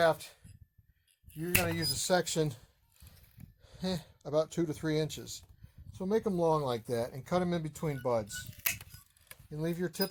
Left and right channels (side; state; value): both; identical; correlation 1.00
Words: you're going to use a section about 2 to 3 inches. So make them long like that and cut them in between buds. And leave your